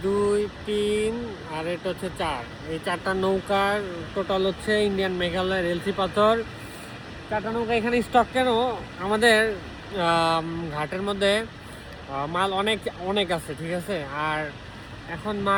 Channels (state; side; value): identical; both; correlation 1.00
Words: 2 3 আর এটা হচ্ছে 4। এই চারটা নৌকার টোটাল হচ্ছে ইন্ডিয়ান মেঘালয়ের এলসি পাথর। চারটা নৌকা এখানে স্টক কেন? আমাদের ঘাটের মধ্যে মাল অনেক অনেক আছে, ঠিক আছে। আর এখন